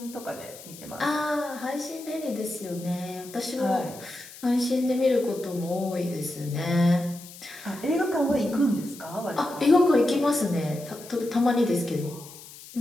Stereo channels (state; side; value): noise; left; hiss, 17 dB below the sound